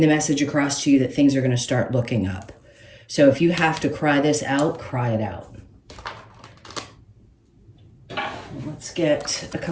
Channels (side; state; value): both; identical; correlation 1.00